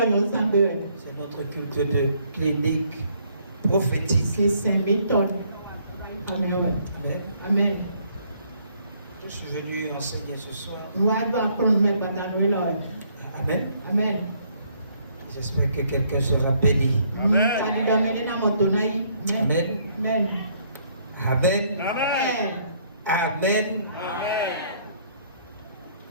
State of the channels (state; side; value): inverted; both; correlation -0.66